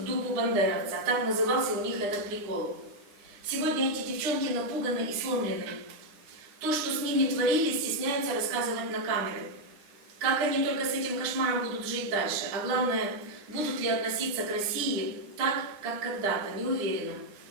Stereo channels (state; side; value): late; left; 10 ms